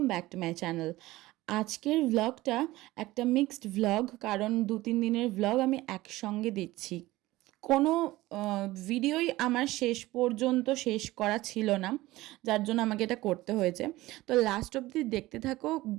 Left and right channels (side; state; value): left; quieter; 18.1 dB